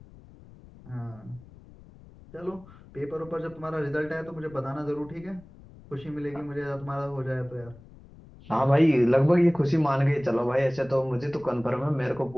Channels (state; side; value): noise; left; rumble, 22 dB below the sound